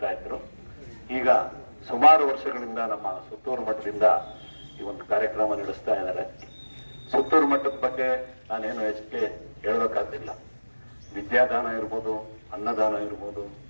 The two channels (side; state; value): both; inverted; correlation -1.00